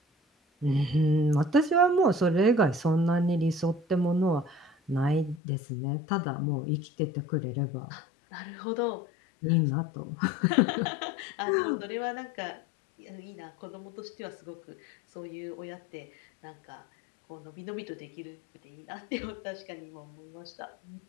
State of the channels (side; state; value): right; drops out; at 5.4 s